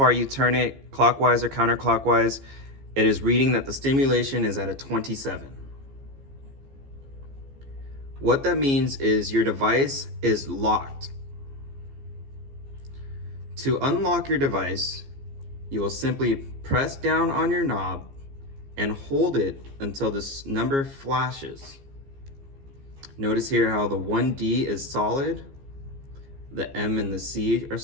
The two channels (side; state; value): left; late; 15 ms